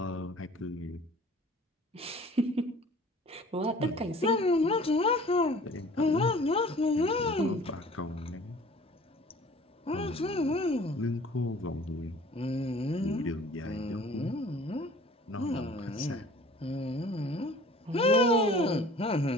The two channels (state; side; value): normal; both; correlation 0.48